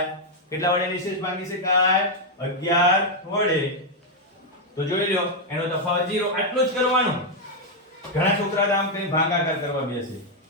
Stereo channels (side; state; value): both; normal; correlation 0.00